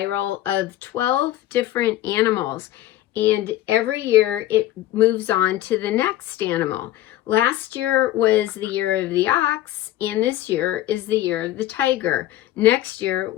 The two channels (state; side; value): quieter; right; 14.2 dB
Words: of 12 different animals, and every year it moves on to the next animal. Last year was the year of the ox, and this year is the year of the tiger. Next year